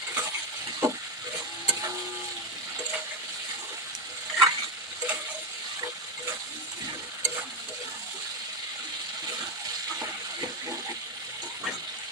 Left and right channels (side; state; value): both; normal; correlation 0.09